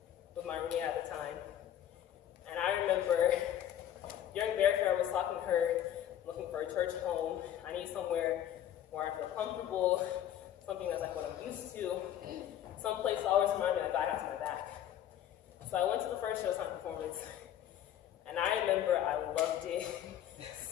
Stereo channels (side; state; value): right; quieter; 11.1 dB